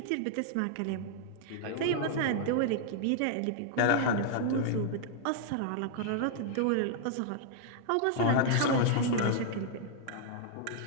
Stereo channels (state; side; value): different; both; correlation -0.01